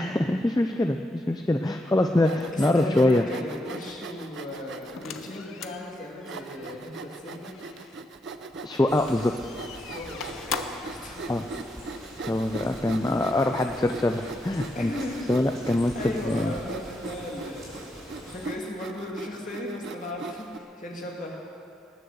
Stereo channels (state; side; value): normal; both; correlation 0.81